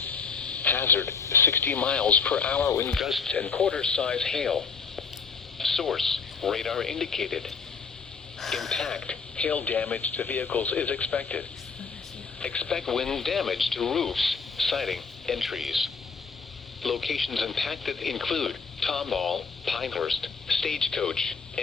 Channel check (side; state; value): right; quieter; 5.3 dB